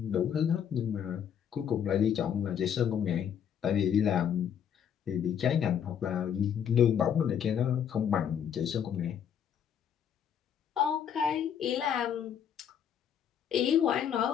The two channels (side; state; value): right; quieter; 8.6 dB